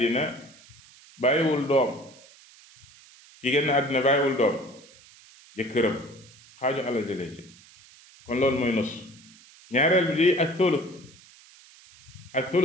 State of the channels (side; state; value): right; noise; hiss, 24 dB below the sound